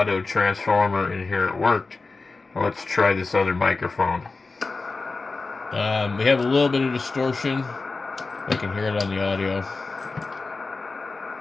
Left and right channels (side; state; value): right; quieter; 3.8 dB